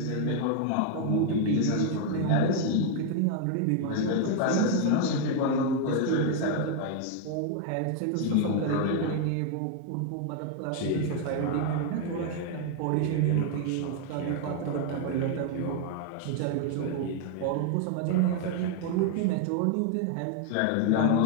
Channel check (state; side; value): different; both; correlation 0.00